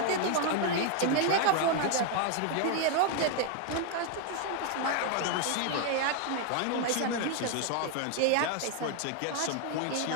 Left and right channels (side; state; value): both; different; correlation 0.00